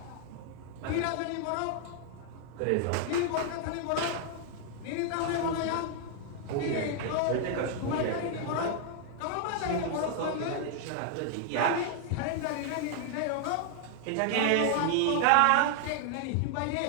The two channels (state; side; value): different; both; correlation 0.00